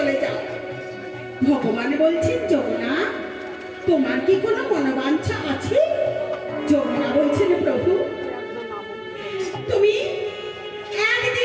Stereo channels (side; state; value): both; identical; correlation 1.00